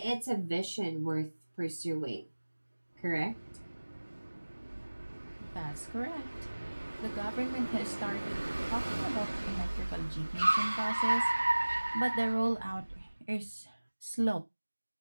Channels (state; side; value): inverted; both; correlation -1.00